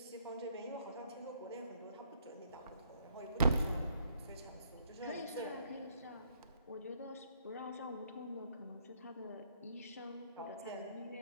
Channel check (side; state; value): both; inverted; correlation -0.68